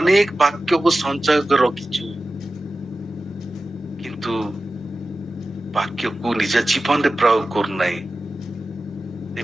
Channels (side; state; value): both; normal; correlation 0.94